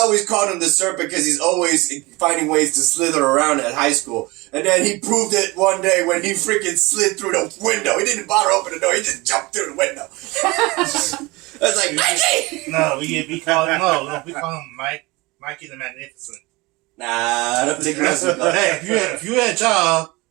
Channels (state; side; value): quieter; left; 23.2 dB